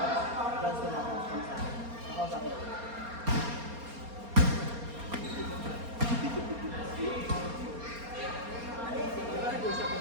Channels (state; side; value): late; left; 4.3 ms